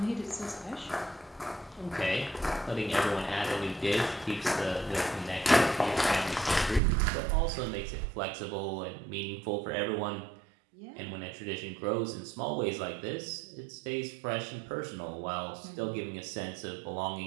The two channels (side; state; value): left; drops out; at 6.8 s